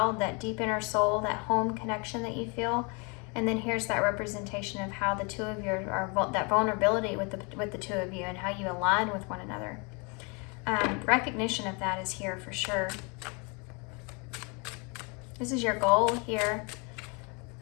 that deep inner soul, that home connection that you feel. And then here's that representation of how the two of you are that vulnerability with the two of you and how you align with one another. Recognition of that is here for sure. This is your goal here.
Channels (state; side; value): quieter; right; 31.8 dB